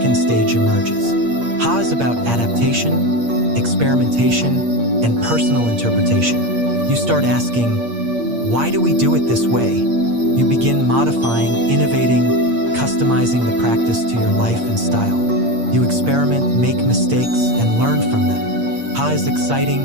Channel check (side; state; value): left; late; 8.6 ms